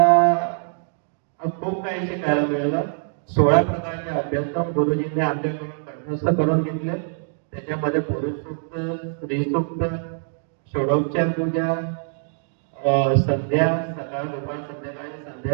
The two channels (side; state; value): left; silent; 63 dB below the other